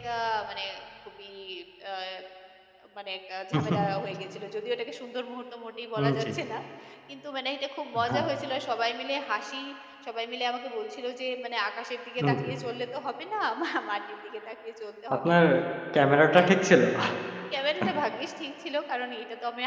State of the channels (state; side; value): identical; both; correlation 1.00